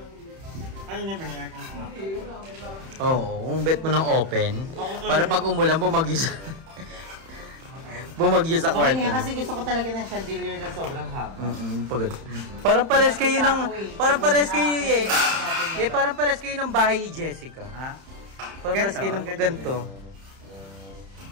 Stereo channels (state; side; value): late; left; 31 ms